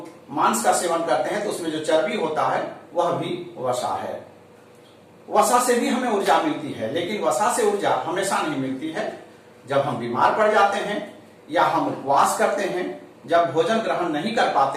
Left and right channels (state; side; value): identical; both; correlation 1.00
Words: मांस का सेवन करते हैं तो उसमें जो चर्बी होता है वह भी वसा है। वसा से भी हमें ऊर्जा मिलती है, लेकिन वसा से ऊर्जा हमेशा नहीं मिलती है। जब हम बीमार पड़ जाते हैं या हम उपवास करते हैं, जब भोजन ग्रहण नहीं कर